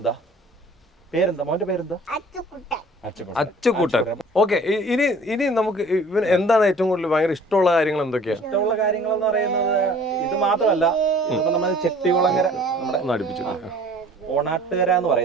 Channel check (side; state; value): both; normal; correlation 0.50